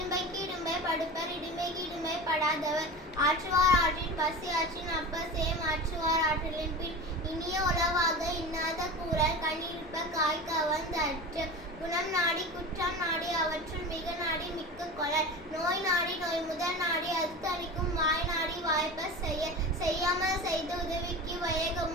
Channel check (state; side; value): normal; both; correlation 0.30